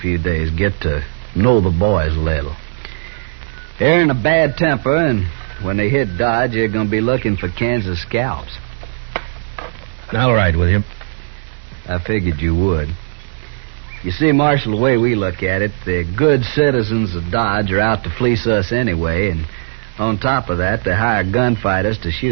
few days, get to know the boys a little. They're in a bad temper, and when they hit Dodge, they're going to be looking for Kansas scalps. I'll ride with you. I figured you would. You see, Marshal, the way we look at it, the good citizens of Dodge are out to fleece us anyway, and on top of that, they hire gunfighters to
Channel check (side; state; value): left; silent; digital silence